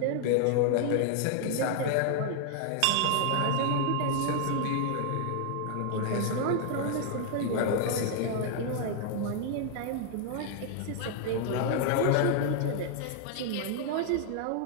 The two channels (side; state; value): both; different; correlation 0.00